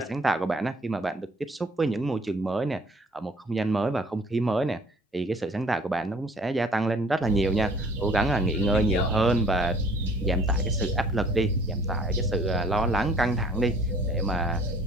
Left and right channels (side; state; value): both; normal; correlation 0.54